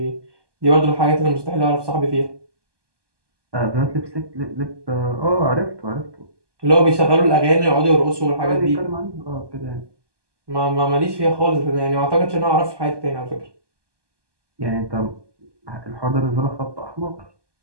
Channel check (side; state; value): left; late; 1.2 ms